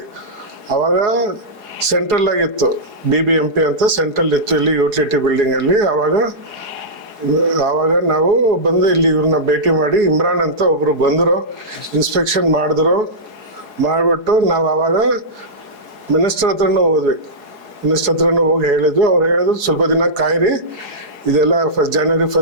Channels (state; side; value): late; left; 4.8 ms